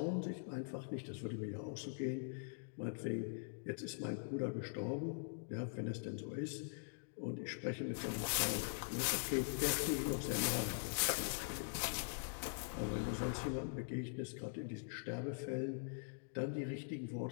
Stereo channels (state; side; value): silent; right; digital silence